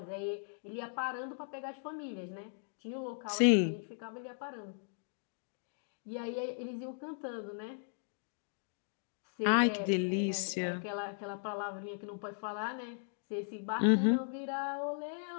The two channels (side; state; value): right; silent; digital silence